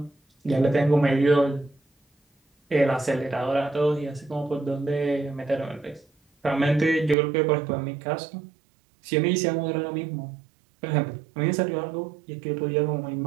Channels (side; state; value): left; drops out; at 7.2 s